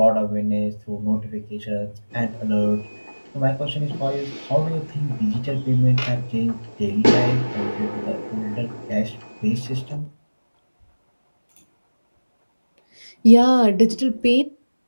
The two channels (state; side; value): inverted; both; correlation -1.00